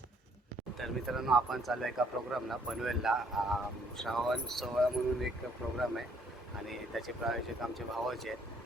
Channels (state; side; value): normal; both; correlation 0.64